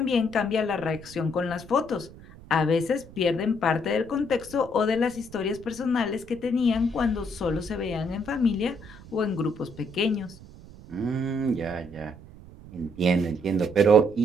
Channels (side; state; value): right; noise; rumble, 19 dB below the sound